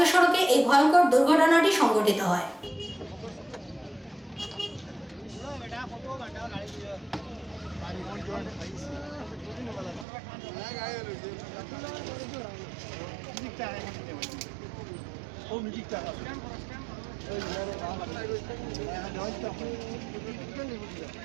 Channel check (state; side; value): drops out; left; at 10.1 s